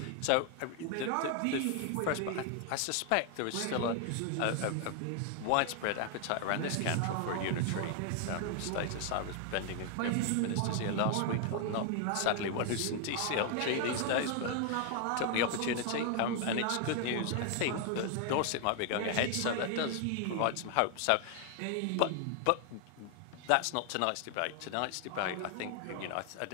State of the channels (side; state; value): both; different; correlation 0.00